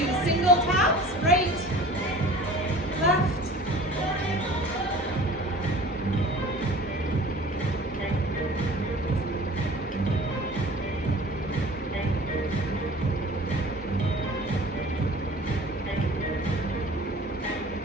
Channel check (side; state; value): both; normal; correlation 0.43